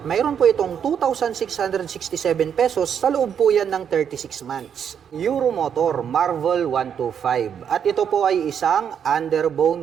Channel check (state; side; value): quieter; left; 8.0 dB